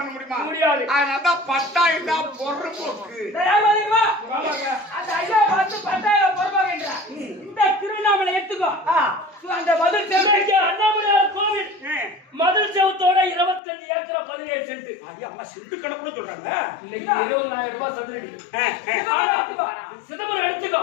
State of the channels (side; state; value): right; drops out; at 13.6 s